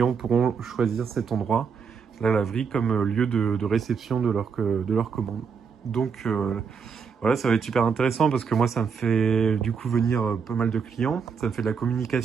pourront choisir cet endroit, la laverie, comme lieu de réception de leur commande. Donc voilà, ça va être super intéressant parce que moi, ça me fait du coup venir pas mal de clients. Ça me fait de la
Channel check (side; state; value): left; quieter; 6.0 dB